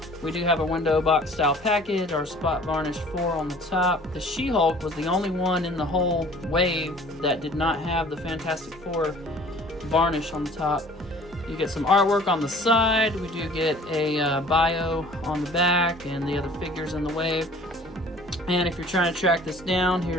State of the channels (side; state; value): both; normal; correlation 0.50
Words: We do have a window box style package, our spot varnish 4 on the top. The She-Hulk was the only one in the whole wave that did not have the Fantastic Four varnish on the top. You get some artwork on the side. We do get a bio on the back and the other figures in the wave. And if you're trying to track this down,